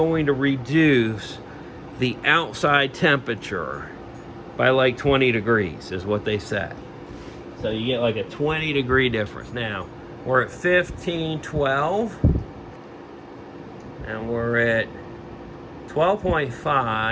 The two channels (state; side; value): identical; both; correlation 1.00